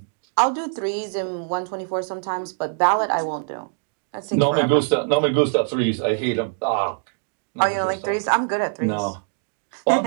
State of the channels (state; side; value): silent; left; digital silence